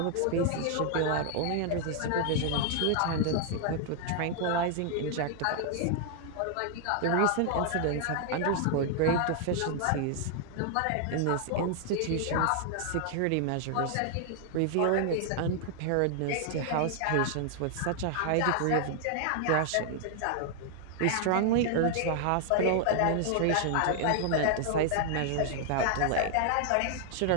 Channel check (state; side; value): different; both; correlation 0.00